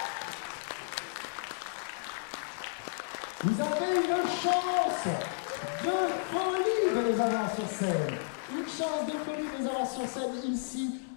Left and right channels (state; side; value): silent; right; digital silence